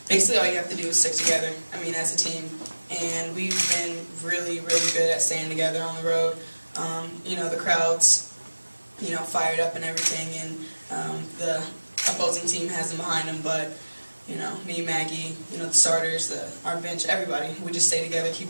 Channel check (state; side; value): inverted; both; correlation -1.00